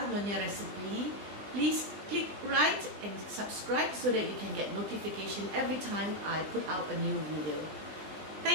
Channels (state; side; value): late; left; 20 ms